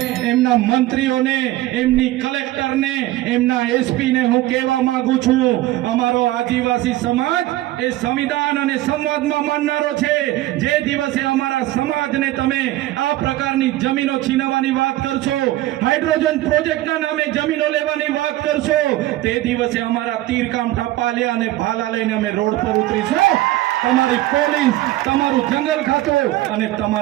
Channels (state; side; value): quieter; left; 16.2 dB